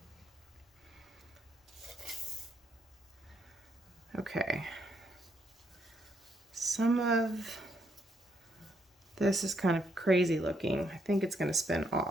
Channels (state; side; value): normal; both; correlation 0.75